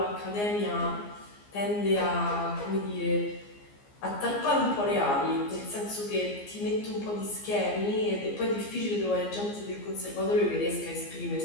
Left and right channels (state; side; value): late; right; 15 ms